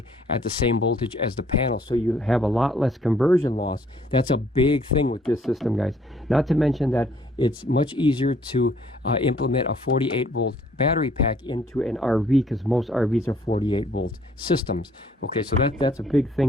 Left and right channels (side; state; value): both; normal; correlation 0.62